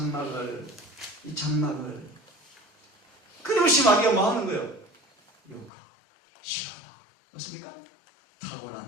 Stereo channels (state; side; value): drops out; right; at 5.7 s